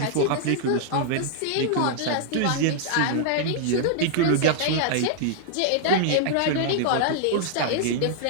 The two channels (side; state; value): both; different; correlation -0.01